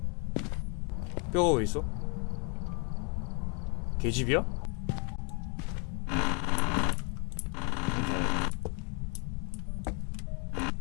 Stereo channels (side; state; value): right; quieter; 35.6 dB